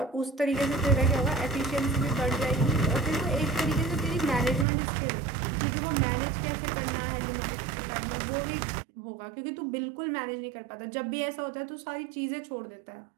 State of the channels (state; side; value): drops out; left; at 4.7 s